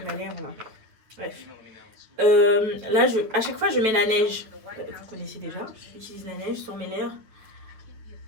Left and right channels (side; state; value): left; late; 9.2 ms